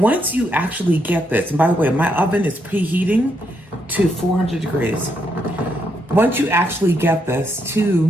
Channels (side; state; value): both; normal; correlation 0.78